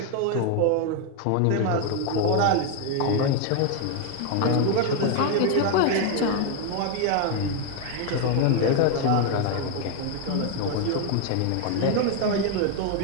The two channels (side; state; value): both; different; correlation 0.01